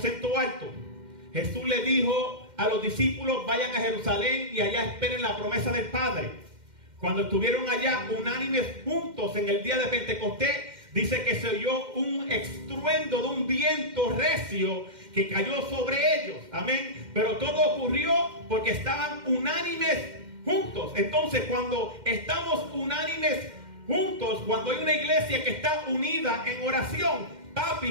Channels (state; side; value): late; left; 2.1 ms